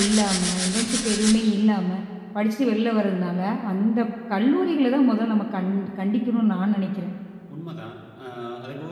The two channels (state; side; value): identical; both; correlation 1.00